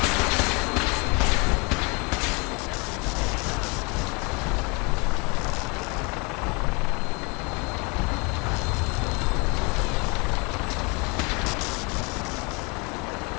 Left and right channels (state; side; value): quieter; right; 30.2 dB